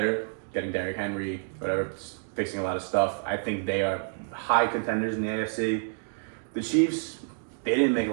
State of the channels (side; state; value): left; silent; digital silence